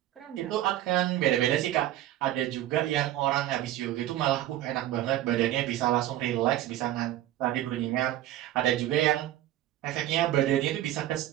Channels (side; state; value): left; quieter; 13.7 dB